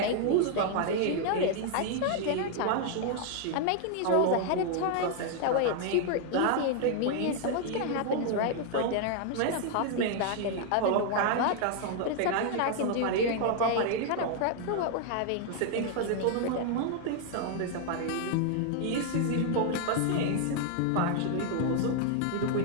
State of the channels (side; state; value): both; different; correlation 0.00